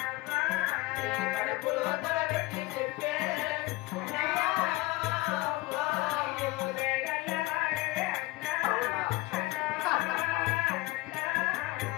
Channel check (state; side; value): quieter; right; 20.5 dB